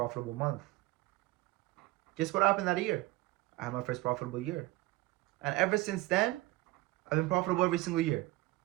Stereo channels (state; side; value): quieter; left; 19.4 dB